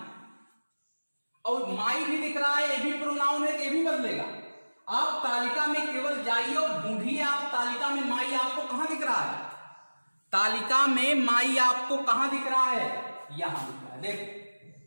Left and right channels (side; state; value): both; inverted; correlation -1.00